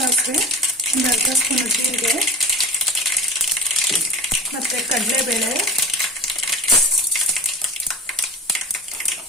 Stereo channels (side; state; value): both; normal; correlation 0.32